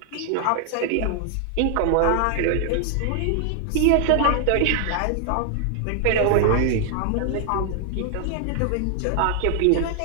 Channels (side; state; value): both; different; correlation 0.00